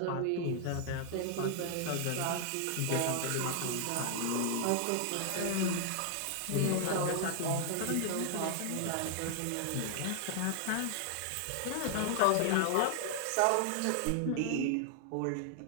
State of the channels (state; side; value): different; both; correlation 0.00